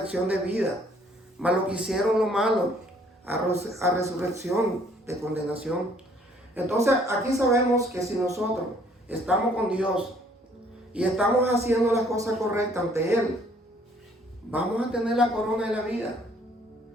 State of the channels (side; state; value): both; normal; correlation 0.61